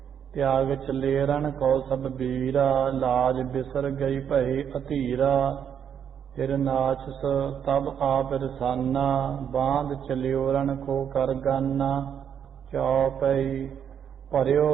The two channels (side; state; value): left; quieter; 8.4 dB